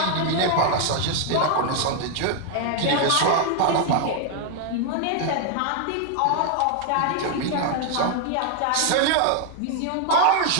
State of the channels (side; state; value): both; different; correlation 0.00